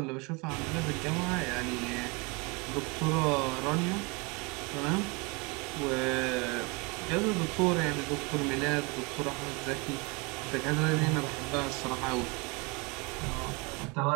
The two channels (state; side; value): quieter; left; 28.8 dB